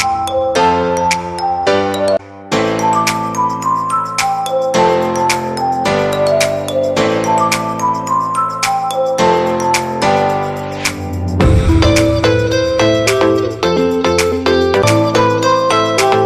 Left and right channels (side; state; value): both; identical; correlation 1.00